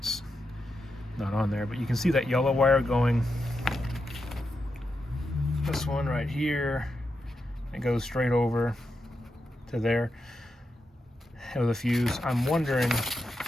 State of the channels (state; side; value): normal; both; correlation 0.86